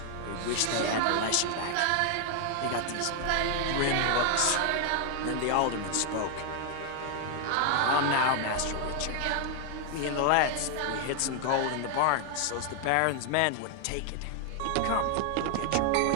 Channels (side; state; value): both; different; correlation 0.00